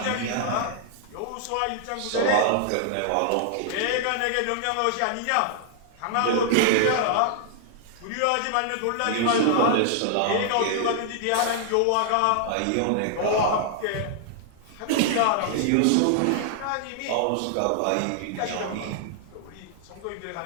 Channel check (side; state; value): both; different; correlation -0.01